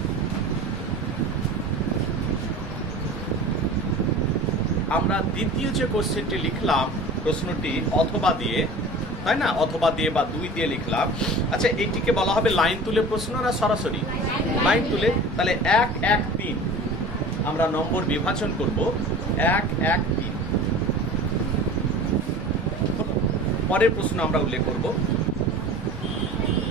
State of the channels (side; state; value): both; normal; correlation 0.39